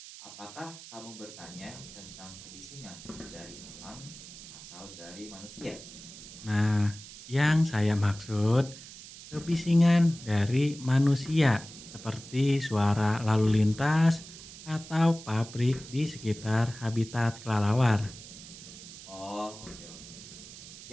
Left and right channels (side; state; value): right; noise; hiss, 15 dB below the sound